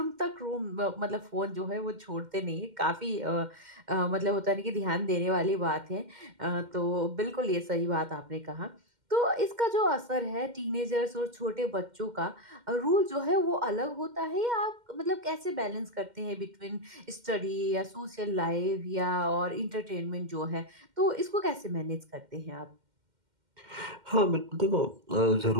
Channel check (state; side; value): late; left; 2.1 ms